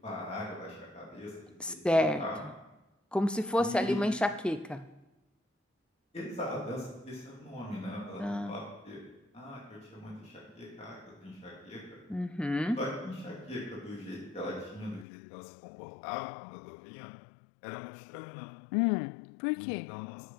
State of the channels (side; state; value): right; drops out; at 15.1 s